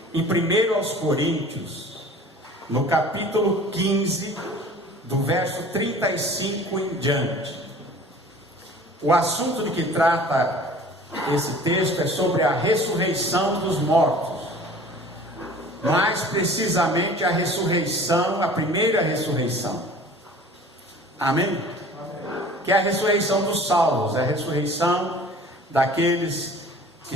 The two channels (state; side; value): normal; both; correlation 0.46